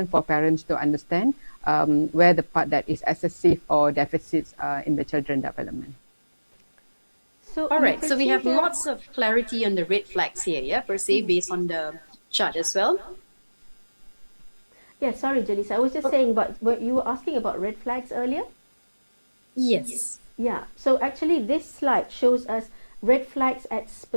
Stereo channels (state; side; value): inverted; both; correlation -1.00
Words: for parents to understand where the part that is excessive or deficits in the children development. So all right, so we have lots of clarity on the red flags here, per se, based on the chart as well. Yeah, sorry, Janice. I was just saying, but you were asking about red flags earlier? Yes. Yeah, so actually this slide shows us red flags at